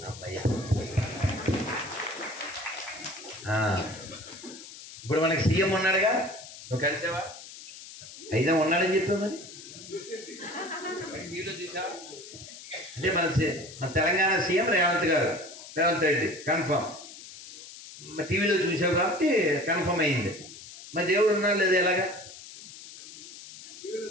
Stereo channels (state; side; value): noise; left; hiss, 15 dB below the sound